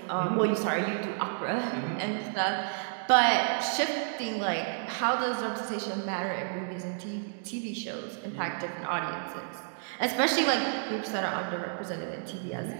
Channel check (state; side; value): silent; left; digital silence